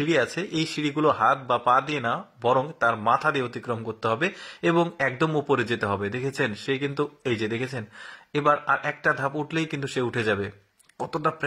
আছে, এই সিঁড়িগুলো হাত বা পা দিয়ে না, বরং তার মাথা দিয়ে অতিক্রম করতে হবে এবং একদম উপরে যেতে হবে। দেখেছেন সে কিন্তু এই যে দেখেছেন, এবার আর একটা ধাপ উঠলেই কিন্তু সে উঠে যাবে। কতটা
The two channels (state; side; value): identical; both; correlation 1.00